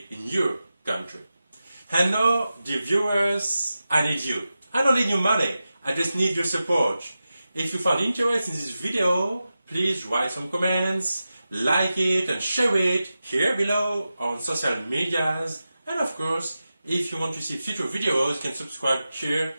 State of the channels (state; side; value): inverted; both; correlation -0.92